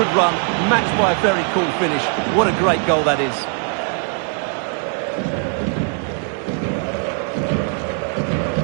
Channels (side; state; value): left; quieter; 40.0 dB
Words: run, matched by a very cool finish. What a great goal that is.